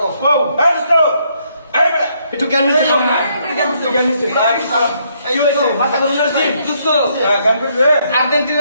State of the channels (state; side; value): inverted; both; correlation -0.72